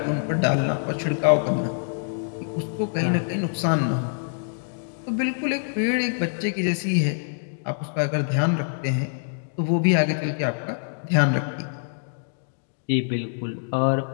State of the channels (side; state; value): right; silent; digital silence